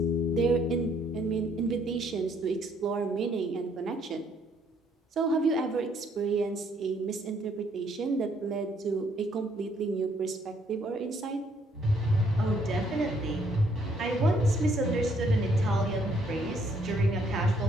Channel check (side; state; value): both; normal; correlation 0.68